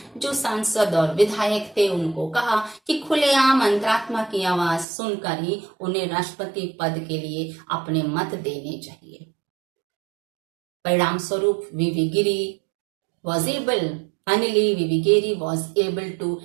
जो सांसद और विधायक थे उनको कहा कि खुलेआम अंतरात्मा की आवाज सुनकर ही उन्हें राष्ट्रपति पद के लिए अपने मत देने चाहिए. परिणाम स्वरूप V.V. Giri was able Finally, V.V. Giri was able to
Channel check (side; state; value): left; drops out; at 4.9 s